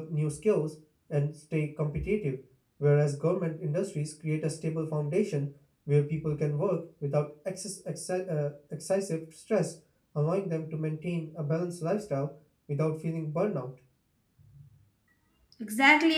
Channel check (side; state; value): both; identical; correlation 1.00